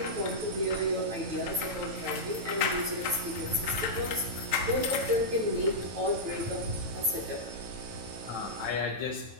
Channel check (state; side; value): late; left; 9.2 ms